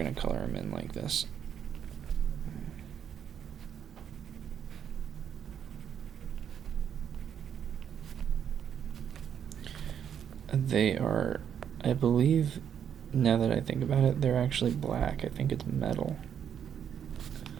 to color them in like this. They are, I believe, now that I think about it, they're actually black. I think it's metal.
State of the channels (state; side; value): quieter; left; 8.6 dB